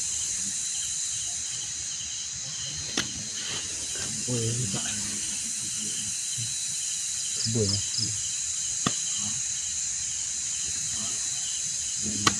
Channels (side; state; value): both; identical; correlation 1.00